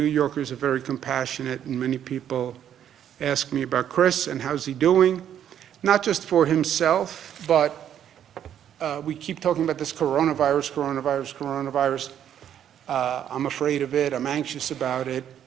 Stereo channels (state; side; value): quieter; left; 9.9 dB